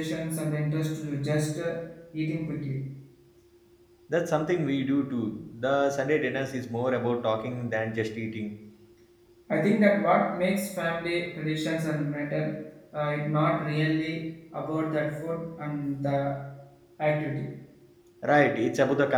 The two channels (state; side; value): identical; both; correlation 1.00